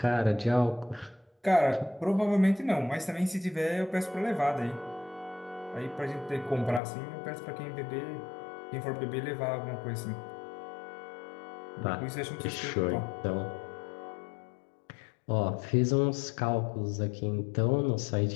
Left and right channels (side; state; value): right; drops out; at 6.8 s